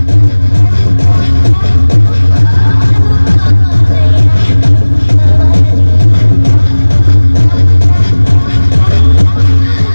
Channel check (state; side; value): inverted; both; correlation -1.00